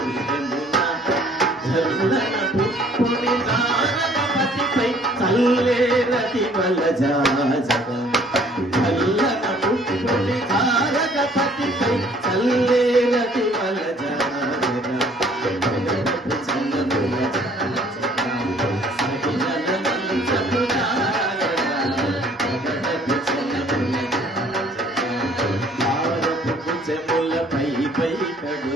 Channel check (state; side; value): normal; both; correlation 0.58